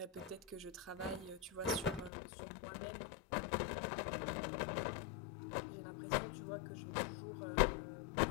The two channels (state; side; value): drops out; right; at 2.1 s